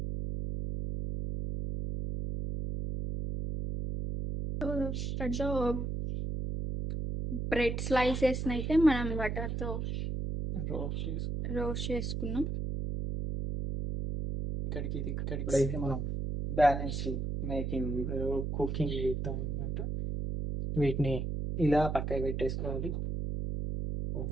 సో బ్రెడ్ స్లైసెస్ అయితే మనం బటర్తో రోస్ట్ చేసుకున్నాం. ఇక్కడికి అయితే మనం బ్యాలెన్స్ మేకింగ్ కుకింగ్ చేద్దాం అన్నమాట. వీటిని ఇలా పక్కకి పెట్టేసుకోవాలి.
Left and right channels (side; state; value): right; noise; hum, 2 dB below the sound